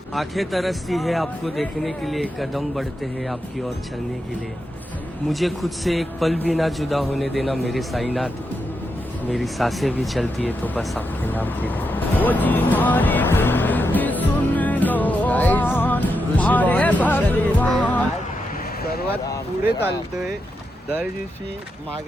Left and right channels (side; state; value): both; normal; correlation 0.85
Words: आंखें तरसती है आपको देखने के लिए, कदम बढ़ते हैं आपकी ओर चलने के लिए। मुझे खुद से एक पल भी ना जुदा होने देना मेरे साईनाथ। मेरी सांसें भी चलती है तो बस आपके नाम के लिए। ओ जी मारी बिनती सुन लो मारे भगवान। सर्वात पुढे चालतोय, दर दिवशी